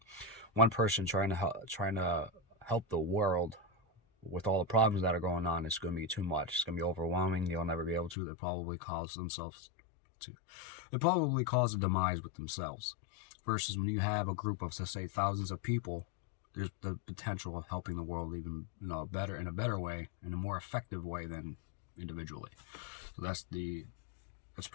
one person trying to help the world with all the problems that are going on, it's going to be too much. It's going to be overwhelming. They'll never be able to. They'll probably cause a demise with themselves. Versus when you have a group of, say, thousands of people, there's the potential of helping the world even in a better way, in a more effective way than individually. So that's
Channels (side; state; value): right; drops out; at 8.2 s